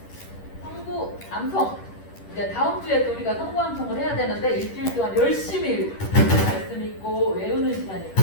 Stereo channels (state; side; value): late; right; 10 ms